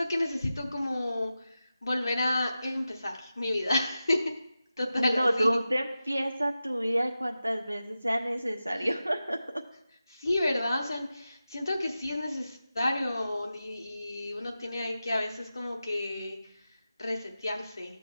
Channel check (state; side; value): inverted; both; correlation -0.93